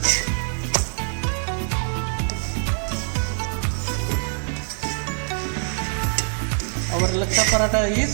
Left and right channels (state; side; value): silent; left; 63 dB below the other